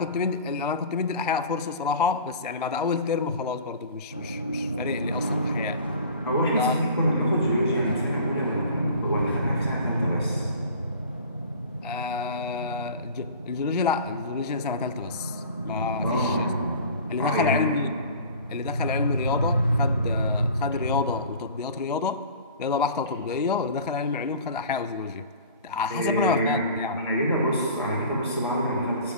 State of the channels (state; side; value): inverted; both; correlation -0.42